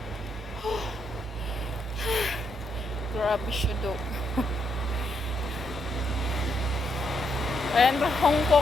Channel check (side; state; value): both; normal; correlation 0.77